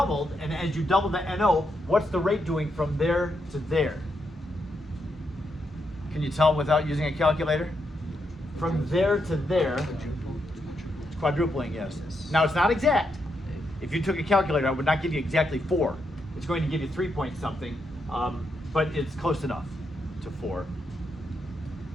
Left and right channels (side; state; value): both; normal; correlation 0.81